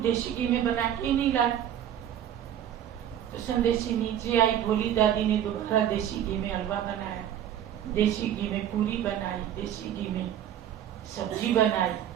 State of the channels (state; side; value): quieter; left; 10.5 dB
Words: घी में बना के ही नहीं लाई। तो संदेशी नीचे आई, भोली दादी ने दोबारा देसी घी में हलवा बनाया, देसी घी में पूरी बनाई, देसी घी में सब्जी बनाई,